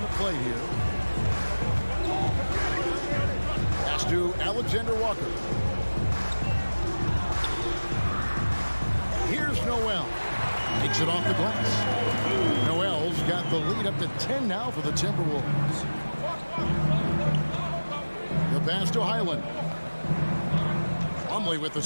play here. Pass to Alexander Walker. Here's Noel. Takes it off the glass. Noel's got the lead up to 10 now for the Timberwolves. The pass to Highland. Plumlee with the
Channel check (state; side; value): inverted; both; correlation -1.00